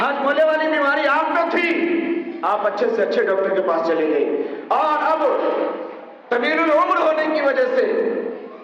والی بیماری آپ کو تھی، آپ اچھے سے اچھے ڈاکٹر کے پاس چلے گئے، اور اب طویل العمر ہونے کی وجہ سے،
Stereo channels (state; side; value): identical; both; correlation 1.00